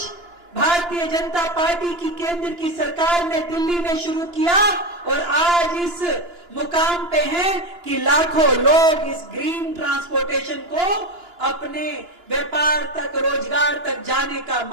भारतीय जनता पार्टी की केंद्र की सरकार ने दिल्ली में शुरू किया और आज इस मुकाम पे हैं कि लाखों लोग इस ग्रीन ट्रांसपोर्टेशन को अपने व्यापार तक, रोजगार तक जाने का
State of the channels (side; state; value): left; late; 2.9 ms